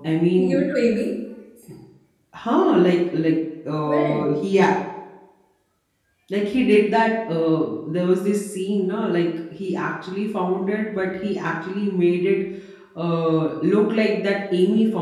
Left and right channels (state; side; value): identical; both; correlation 1.00